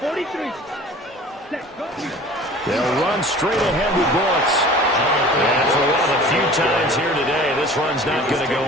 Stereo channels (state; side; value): normal; both; correlation 0.44